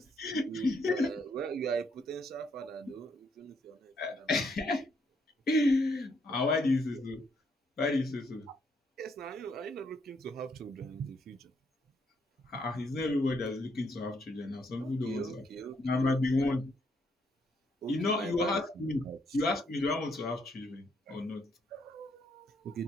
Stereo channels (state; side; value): normal; both; correlation 0.73